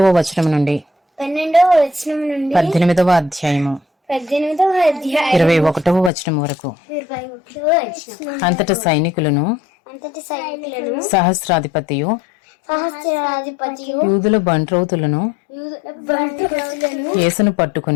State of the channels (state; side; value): drops out; right; at 6.1 s